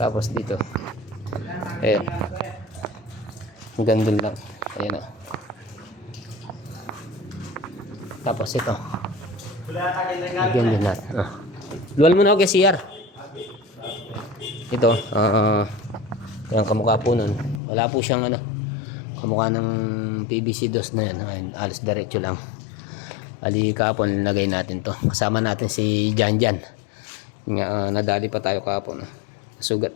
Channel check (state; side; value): drops out; right; at 17.6 s